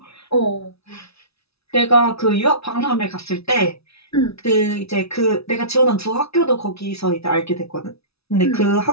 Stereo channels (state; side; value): late; right; 0.78 ms